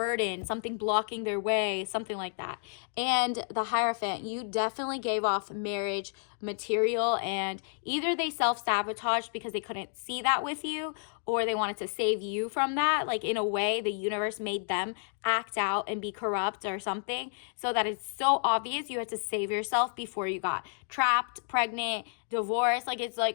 something blocking their way, something like that. And the Hierophant, you definitely gave off marriage material, and either they self-sabotaged because they couldn't see that with you, or they wanted to save you from that. Like, in a way, the universe made them act out and be corrupt or something, so that it's so obvious you had to save yourself before you got trapped, pregnant, divorced. Like, it's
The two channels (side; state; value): right; silent; digital silence